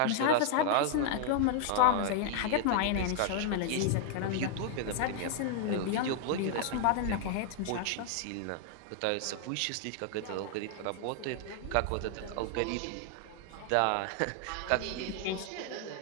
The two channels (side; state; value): both; different; correlation 0.00